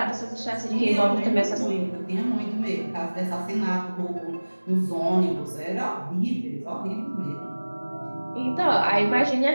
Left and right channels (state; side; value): inverted; both; correlation -1.00